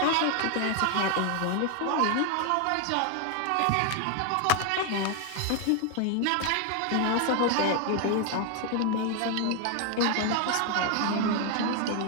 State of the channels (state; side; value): different; both; correlation 0.01